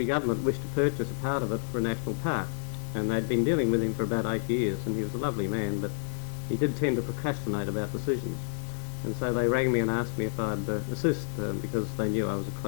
government wished to purchase a part of it for a national park, and they'd been dealing with him for about 8 years, and he was a lovely man, but he did tend to procrastinate about decisions. And so they rang me and asked me if I'd assist because they knew I was a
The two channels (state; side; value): silent; right; digital silence